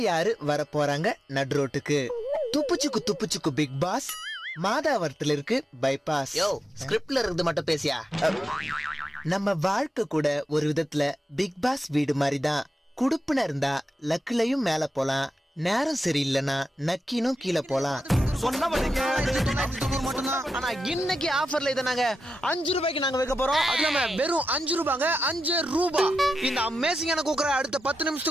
யாரு வர போறாங்க நடுரோட்டுக்கு? துப்புச்சுக்கு பிக் பாஸ். மாதாவரத்துல இருக்கு பைபாஸ். ஸ்கிரிப்ட்ல இருந்து மட்டும் பேசியா? நம்ம வாழ்க்கை கூட ஒரு விதத்துல பிக் பாஸ் வீடு மாதிரிதான். குடுப்புன இருந்தா லக்குலையும் மேல போலாம், நேரம் சரியில்லைன்னா நக்கினும் கீழே போலாம். ஆனா இன்னைக்கு ஆஃபர்ல இதை நாங்க 5 ரூபாய்க்கு நாங்க வைக்க போறோம். அது இல்லாம வெறும் 5 ரூபாங்க, 5 ரூபாய். இந்த அமேசிங்கான குக்கரை அடுத்த 10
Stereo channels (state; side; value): normal; both; correlation 0.90